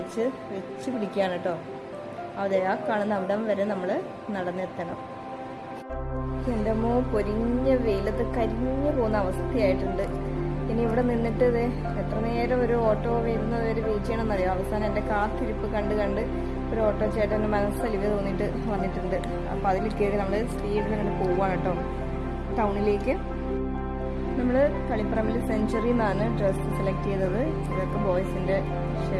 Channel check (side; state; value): both; identical; correlation 1.00